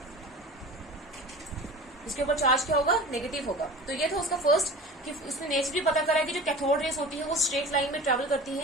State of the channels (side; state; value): both; normal; correlation 0.37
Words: इसके ऊपर चार्ज क्या होगा, नेगेटिव होगा। तो ये था उसका फर्स्ट, कि उसने नेचर भी पता करा कि जो कैथोड रेज होती है वो स्ट्रेट लाइन में ट्रेवल करती